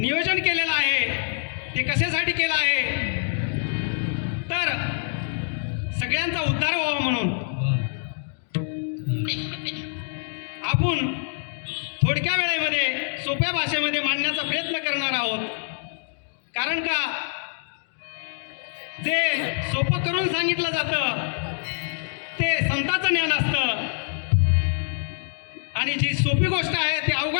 केलेलं आहे ते कशासाठी केलं आहे, तर सगळ्यांचा उद्धार व्हावा म्हणून आपण थोडक्या वेळेमध्ये सोप्या भाषेमध्ये मांडण्याचा प्रयत्न करणार आहोत। कारण का जे सोपं करून सांगितलं जातं ते संतांचं ज्ञान असतं आणि जी सोपी गोष्ट आहे ती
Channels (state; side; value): silent; right; digital silence